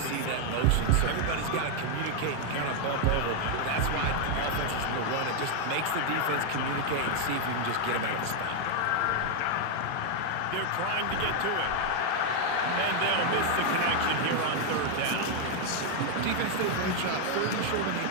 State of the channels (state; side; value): different; both; correlation 0.00